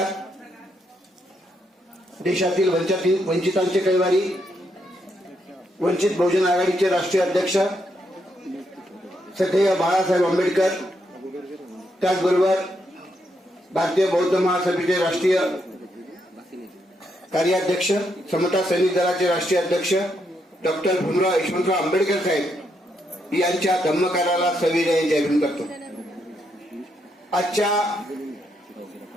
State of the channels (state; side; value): normal; both; correlation 0.78